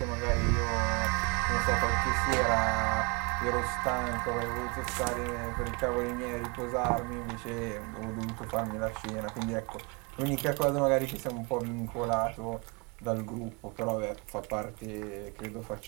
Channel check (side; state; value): left; quieter; 30.5 dB